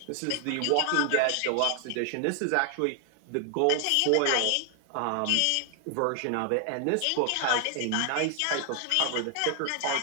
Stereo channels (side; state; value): both; different; correlation 0.00